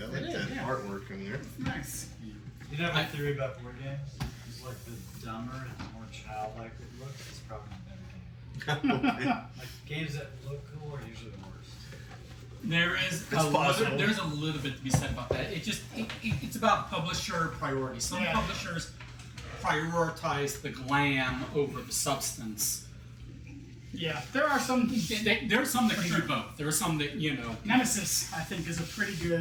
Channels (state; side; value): identical; both; correlation 1.00